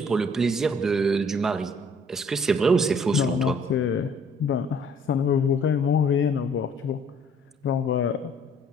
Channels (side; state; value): both; normal; correlation 0.59